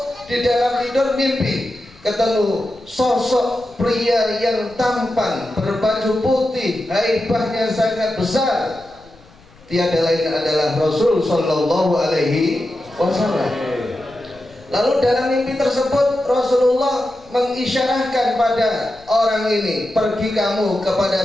di dalam tidur mimpi ketemu sosok pria yang tampan, berbaju putih, haibahnya sangat besar. Tiada lain adalah Rasul Sallallahu Alaihi Wasallam. Lalu dalam mimpi tersebut Rasulullah mengisyarahkan pada orang ini, pergi kamu kepada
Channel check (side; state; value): left; noise; rumble, 27 dB below the sound